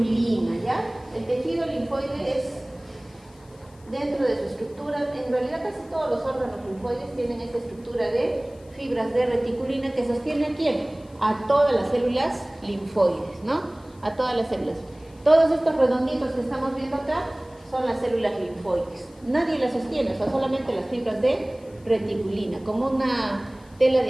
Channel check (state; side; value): noise; left; hiss, 29 dB below the sound